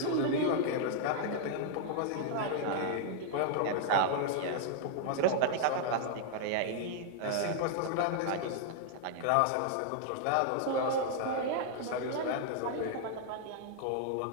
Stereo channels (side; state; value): both; different; correlation -0.01